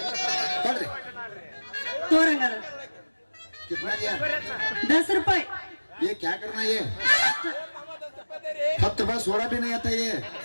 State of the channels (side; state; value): both; inverted; correlation -1.00